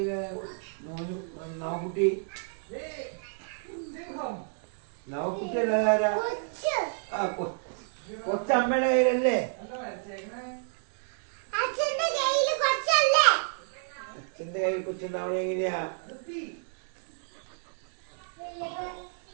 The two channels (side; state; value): left; silent; digital silence